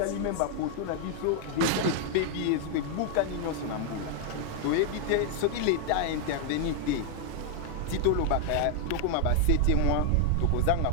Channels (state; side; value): different; both; correlation 0.00